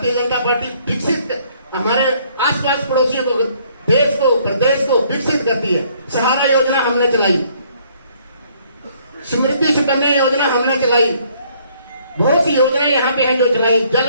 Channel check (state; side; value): inverted; both; correlation -0.64